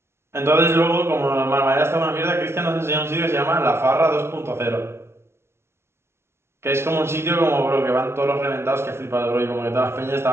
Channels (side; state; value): left; late; 0.12 ms